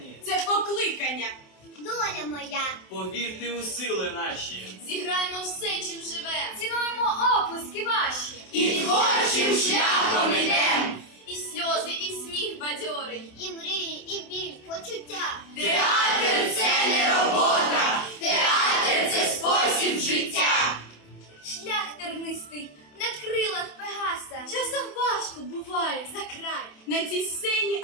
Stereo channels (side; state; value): right; late; 27 ms